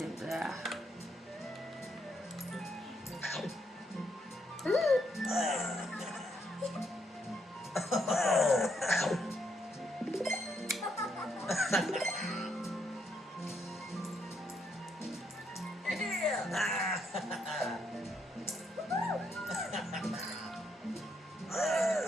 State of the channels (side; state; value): both; normal; correlation 0.75